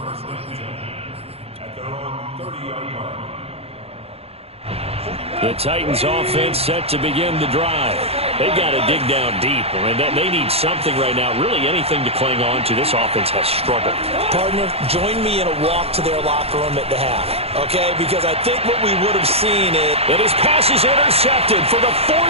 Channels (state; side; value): late; left; 0.29 ms